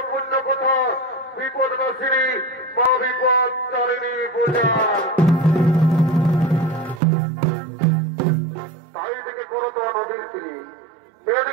কথা বিপদ নাশিনী মা বিপদ তারিণী পূজা। তাই থেকে করতো নদীর তীরে,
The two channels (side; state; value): left; drops out; at 7.0 s